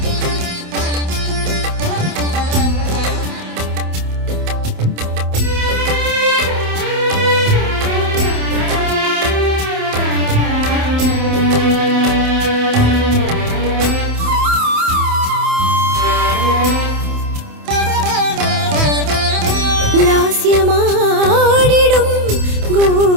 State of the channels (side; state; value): left; late; 27 ms